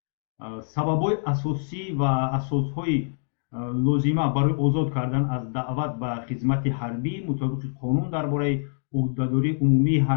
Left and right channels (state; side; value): silent; right; digital silence